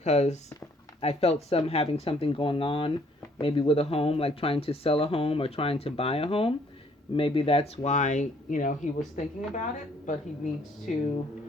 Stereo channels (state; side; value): normal; both; correlation 0.63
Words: I felt having something going on, maybe with a home, like trying to sell a home or trying to buy a home. Maybe that's why, he was thinking about it, but he needs to